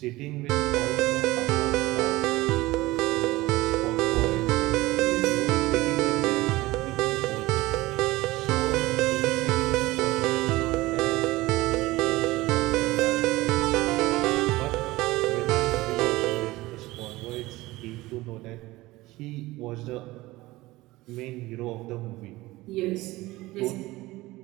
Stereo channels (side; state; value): left; quieter; 19.1 dB